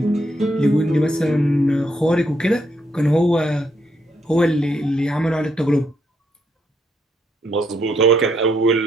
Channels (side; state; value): both; normal; correlation 0.75